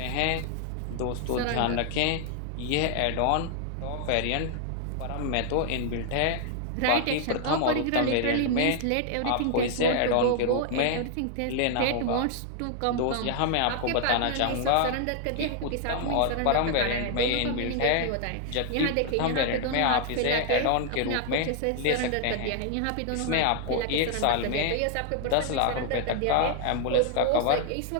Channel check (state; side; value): different; both; correlation 0.00